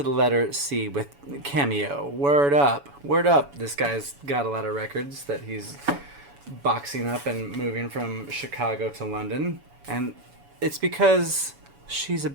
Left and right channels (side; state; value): left; late; 7.1 ms